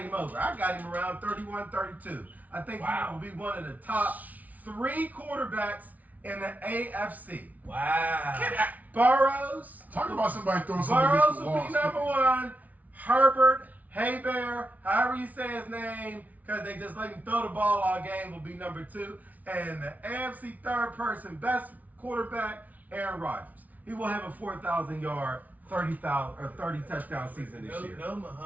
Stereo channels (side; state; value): left; late; 0.074 ms